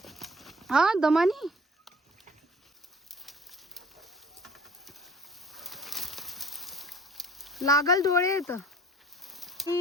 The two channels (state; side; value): normal; both; correlation 0.49